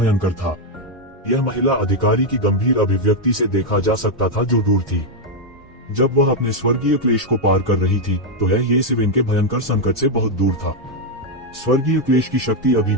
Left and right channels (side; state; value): both; normal; correlation 0.01